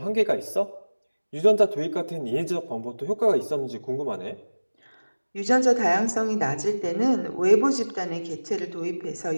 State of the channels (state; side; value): inverted; both; correlation -1.00